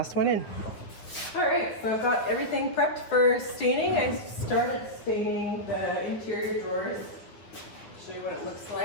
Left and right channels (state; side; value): late; right; 9.5 ms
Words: one in. All right, so I've got everything prepped for staining. I started staining the interior drawers. I'll show you what it looks